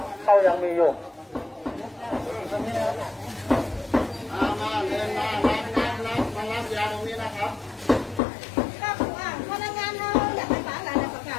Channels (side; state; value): right; drops out; at 8.2 s